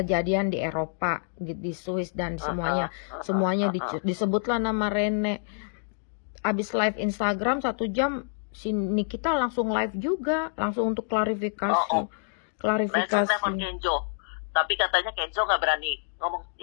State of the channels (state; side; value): silent; right; digital silence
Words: di Eropa, di Swiss dan semuanya disebutlah nama Rene. Abis live Instagram 1 jam si Nikita langsung live juga, langsung untuk klarifikasi. Kenzo. Tapi katanya Kenzo nggak berani ngomong.